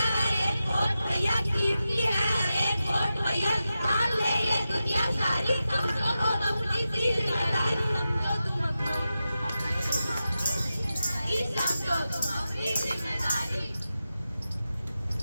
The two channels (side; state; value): both; inverted; correlation -0.91